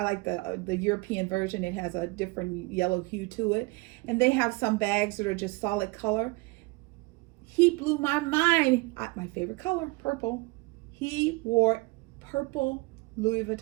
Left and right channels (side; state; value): left; quieter; 25.0 dB